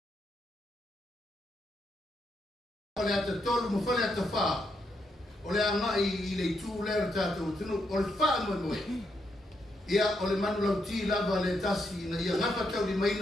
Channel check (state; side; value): normal; both; correlation 0.79